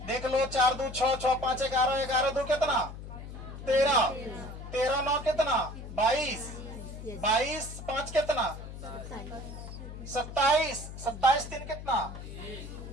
देख लो, 4 2 6, 6 5 11, 11 2 कितना? 13, 13 9 कितना? 22, 22 5 कितना? 27, 27 3 कितना?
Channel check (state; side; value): noise; left; hum, 11 dB below the sound